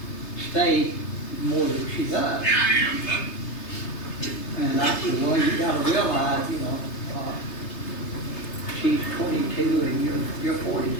stay more than she does. And I said, well, you gotta realize, you know, she's 22 and you're 42.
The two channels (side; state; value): right; late; 3.3 ms